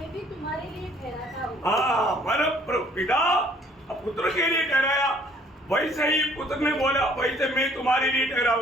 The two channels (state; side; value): normal; both; correlation 0.59